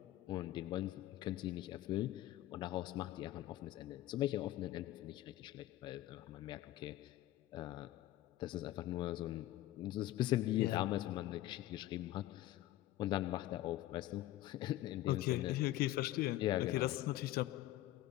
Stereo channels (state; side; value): quieter; right; 15.1 dB